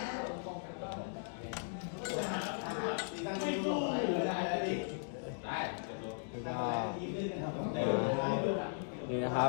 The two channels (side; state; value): right; silent; digital silence